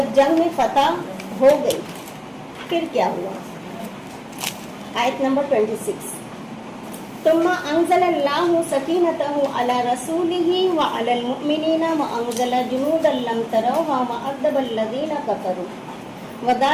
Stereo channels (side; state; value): both; identical; correlation 1.00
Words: جنگ میں فتح ہو گئی پھر کیا ہوا؟ آیت نمبر 26، ثم انزل اللہ سکینتہ علی رسولہ وعلی المؤمنین وانزل جنودا لم تروها وعذب الذین کفروا